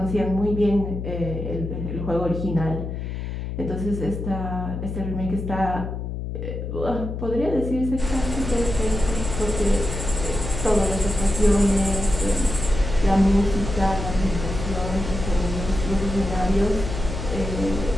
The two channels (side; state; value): left; noise; hum, 5 dB below the sound